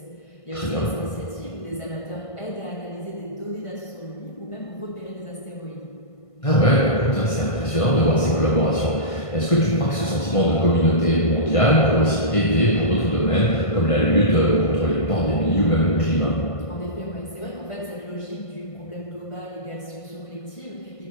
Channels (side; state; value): right; late; 1.5 ms